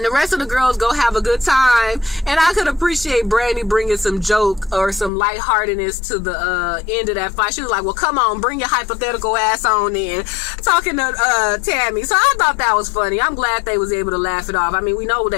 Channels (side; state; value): right; drops out; at 5.1 s